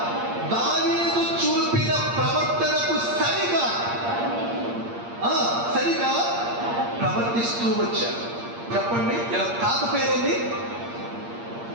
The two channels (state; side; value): late; left; 8.6 ms